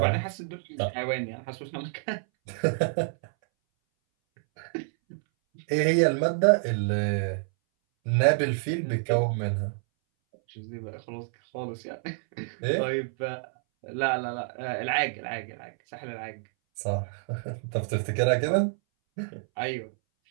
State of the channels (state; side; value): silent; left; 59 dB below the other